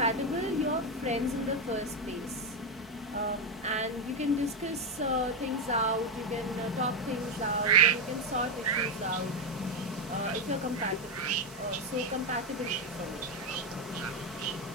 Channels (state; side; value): normal; both; correlation 0.08